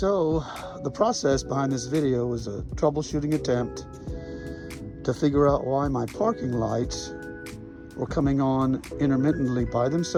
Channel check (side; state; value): both; identical; correlation 1.00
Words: the process behind this video was a troubleshooting attempt to figure out why my parking lights were coming on intermittently by